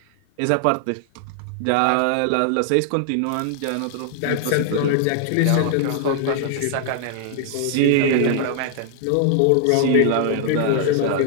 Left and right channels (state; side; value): different; both; correlation 0.00